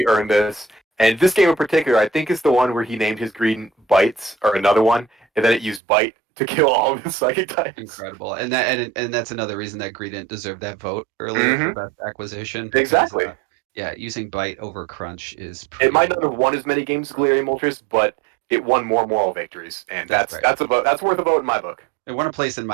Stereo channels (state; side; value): drops out; left; at 5.8 s